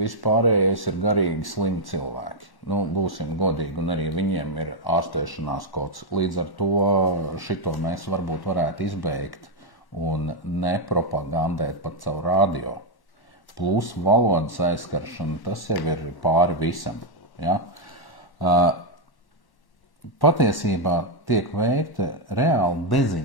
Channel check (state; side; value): late; right; 1.1 ms